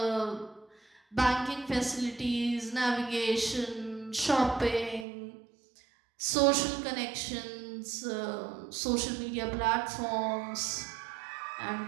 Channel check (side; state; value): left; drops out; at 5.1 s